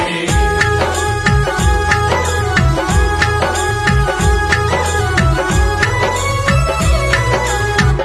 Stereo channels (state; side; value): identical; both; correlation 1.00